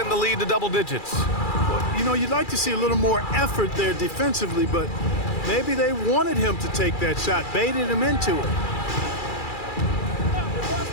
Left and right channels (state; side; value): late; right; 2.3 ms